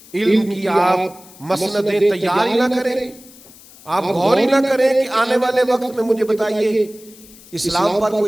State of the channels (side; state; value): left; noise; hiss, 22 dB below the sound